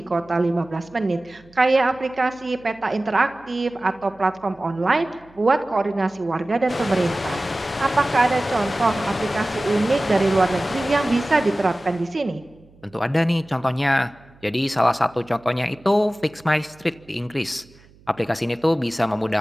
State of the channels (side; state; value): right; noise; hum, 27 dB below the sound